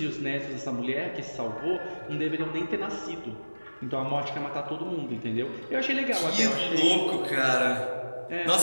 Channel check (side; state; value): both; inverted; correlation -1.00